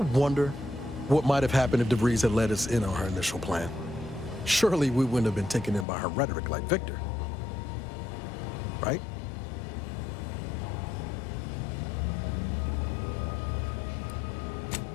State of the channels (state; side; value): drops out; right; at 5.9 s